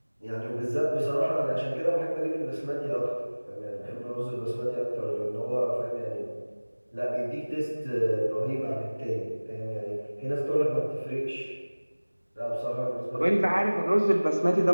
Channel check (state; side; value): inverted; both; correlation -1.00